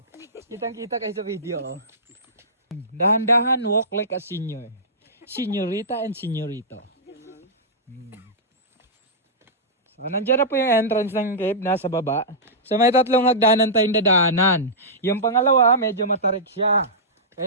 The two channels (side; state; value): both; normal; correlation -0.16